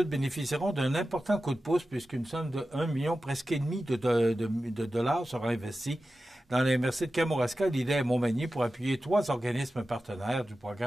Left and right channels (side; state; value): both; normal; correlation 0.93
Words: bénéficieront d'un important coup de pouce puisqu'une somme de 1 million presque et demi de dollars sera investie dans les MRC de Kamouraska, Lillet et Montmagny pour appuyer 3 organismes partenaires du